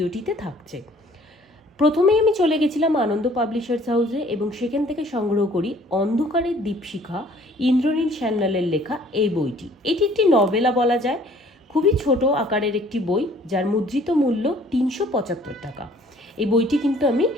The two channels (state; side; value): normal; both; correlation 0.56